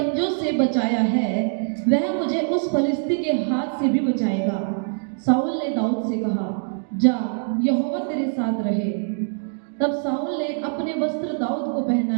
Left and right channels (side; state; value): left; silent; 63 dB below the other